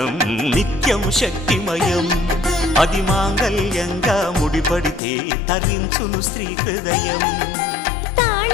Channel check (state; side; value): drops out; right; at 5.0 s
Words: నిత్యం శక్తిమయం అది మాంగళ్యంగా ముడిపడితే తరించును స్త్రీ హృదయం